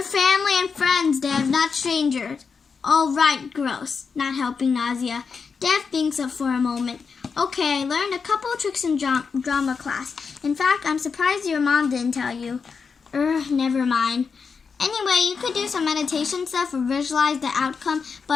family and friends, Dev, not strangers. Oh, right, gross. Not helping nausea. Dev thinks up for a moment. Okay, I learned a couple of tricks in drama class. In fact, I'm surprised your mom didn't tell you. Never mind. Anyway, you could do some meditation stuff or visualize the outcome,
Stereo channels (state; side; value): quieter; right; 5.5 dB